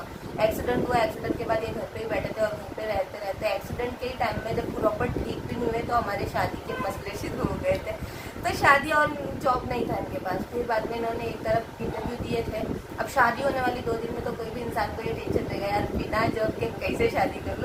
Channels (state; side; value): identical; both; correlation 1.00